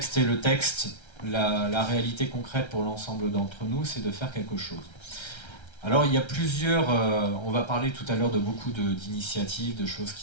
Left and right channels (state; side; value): late; right; 1.3 ms